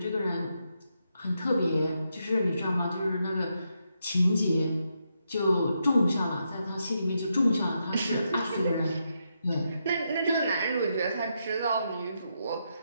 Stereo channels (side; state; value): both; inverted; correlation -0.82